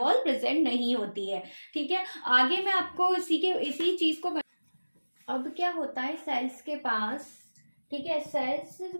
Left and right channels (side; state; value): both; inverted; correlation -1.00